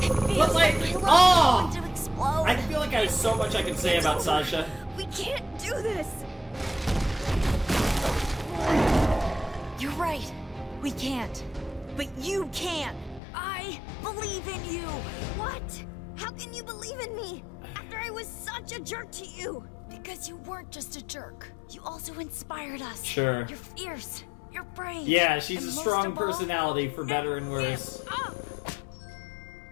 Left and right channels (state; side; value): drops out; right; at 13.2 s